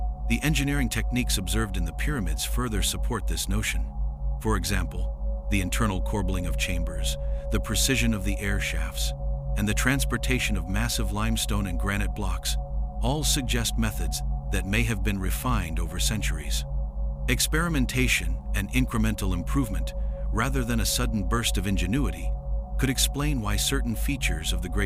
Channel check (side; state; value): both; identical; correlation 1.00